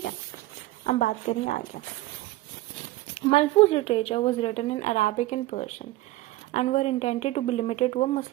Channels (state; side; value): quieter; left; 17.9 dB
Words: है. अब बात करें आगे. Malfuz literature was written in Arabic and Persian and were intended to be limited to a